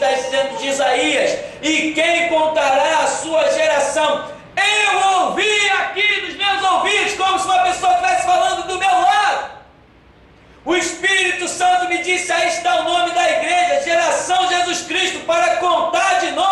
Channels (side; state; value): both; identical; correlation 1.00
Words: dizendo de Isaías: e quem contará a sua geração? Eu ouvi aqui nos meus ouvidos, como se uma pessoa estivesse falando do meu lado. O Espírito Santo me disse: aí está o nome da igreja, Geração Jesus Cristo, para contar de